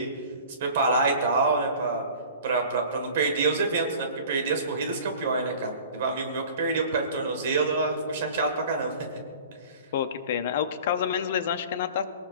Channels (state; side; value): inverted; both; correlation -0.44